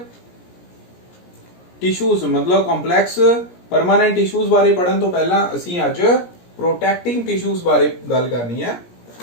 टिशूज मतलब कॉम्पलैक्स परमानेंट टिशूज बारे पढ़न तो पहला असी अज प्रोटैक्टिंग टिशूज बारे गल करनी है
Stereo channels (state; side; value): late; right; 17 ms